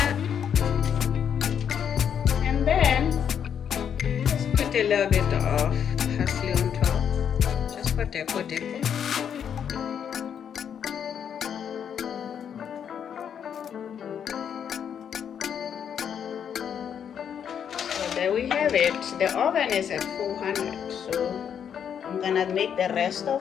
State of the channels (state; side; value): quieter; right; 8.3 dB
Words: And then just put a little bit of parsley on top, just for deco. There we have it. The oven is at 400, so I'm gonna make the rest of